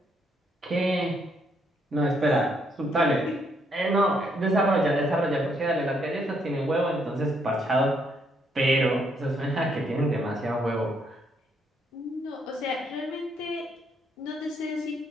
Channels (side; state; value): both; normal; correlation 0.72